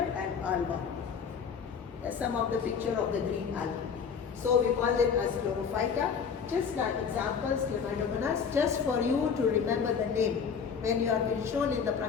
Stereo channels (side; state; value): right; quieter; 6.4 dB